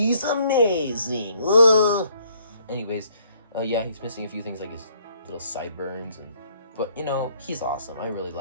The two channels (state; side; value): inverted; both; correlation -0.65